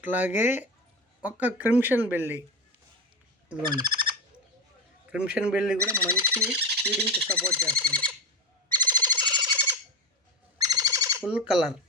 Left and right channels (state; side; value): normal; both; correlation 0.19